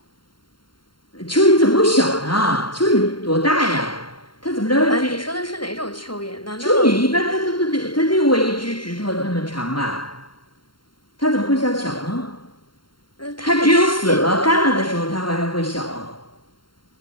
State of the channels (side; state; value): right; late; 0.72 ms